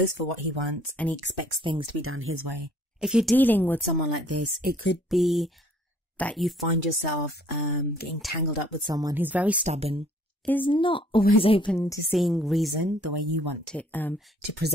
for what he wants, and he expects things to be done his way. If you're dealing with someone like this, it could be that you find yourself getting tangled up with someone who's very stubborn, is not always open to seeing reason the way you want it to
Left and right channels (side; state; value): both; normal; correlation 0.59